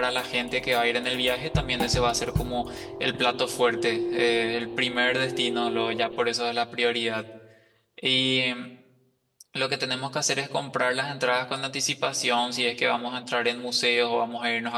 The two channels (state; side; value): identical; both; correlation 1.00